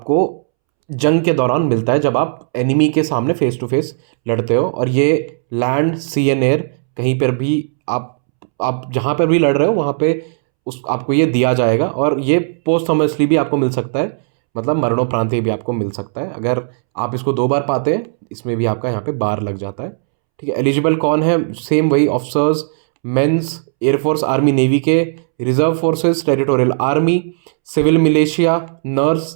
जंग के दौरान मिलता है, जब आप एनिमी के सामने फेस टू फेस लड़ते हो, और ये लैंड, सी एंड एयर, कहीं पर भी आप जहाँ पर भी लड़ रहे हो वहाँ पे आपको ये दिया जाएगा। और ये पोस्टहमसली भी आपको मिल सकता है, मतलब मरणोपरांत भी आपको मिल सकता है। अगर आप इसको 2 बार पाते हैं, इसमें भी आपका यहाँ पे बार लग जाता है, ठीक है। एलिजिबल कौन है? सेम वही officers, mens, air force, army, navy के, reserve forces, territorial army, civil militia,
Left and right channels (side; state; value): left; silent; 69 dB below the other